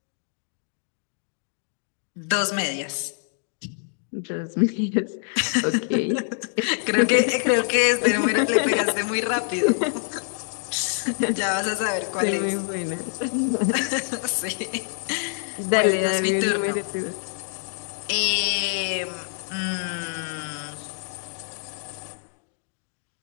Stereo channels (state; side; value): silent; right; digital silence